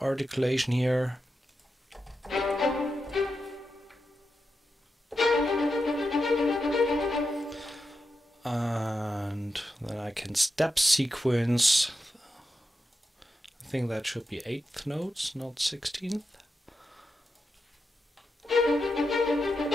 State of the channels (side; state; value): both; normal; correlation 0.88